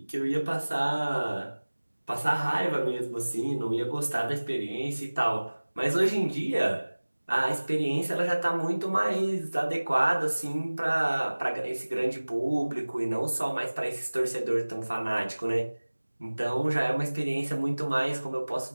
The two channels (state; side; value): inverted; both; correlation -1.00